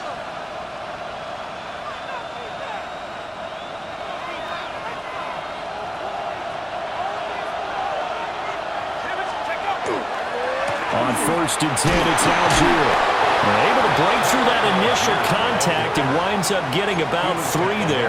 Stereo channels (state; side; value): identical; both; correlation 1.00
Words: On 1st and 10, it's Algier. They're able to break through that initial contact and winds up getting about 3